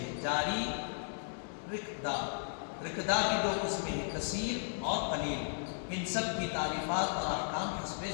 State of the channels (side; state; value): right; silent; digital silence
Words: جاری رکدہ۔ رکدہ کی دو قسمیں ہیں، کثیر اور قلیل۔ ان سب کی تعریفات اور احکام حسب